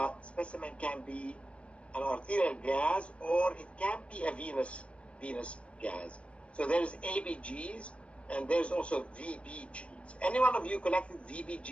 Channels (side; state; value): right; late; 0.061 ms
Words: Specimen can be an arterial gas or it can be a venous gas. So there's ABGs and there's also VBGs. Any one of you collected